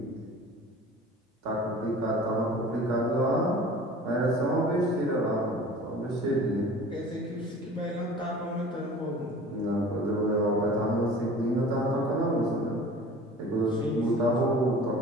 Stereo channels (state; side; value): normal; both; correlation 0.43